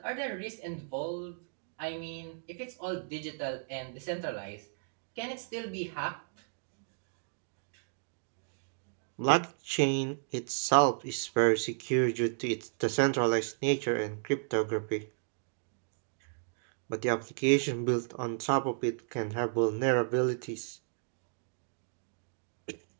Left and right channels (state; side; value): silent; left; digital silence